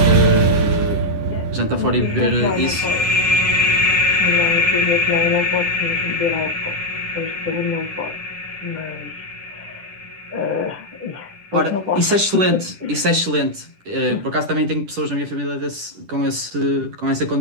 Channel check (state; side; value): late; left; 10 ms